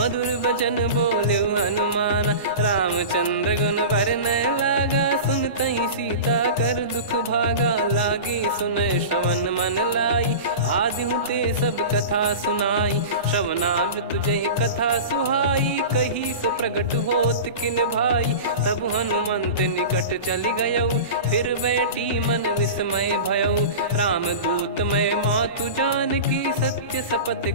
बचन बोले हनुमान, रामचंद्र गुण बरनै लागा। सुनतहि सीता कर दुख भागा, लागी सुनय श्रवण मन लाई। आदि ते सब कथा सुनाई, श्रवणामृत जय कथा सुहाई। कही सो प्रगट होत किन भाई, तब हनुमंत निकट चली गयौ। फिर बैठी मन विस्मय भयौ, राम दूत मैं मातु जानकी। सत्य शपथ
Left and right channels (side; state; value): both; inverted; correlation -0.31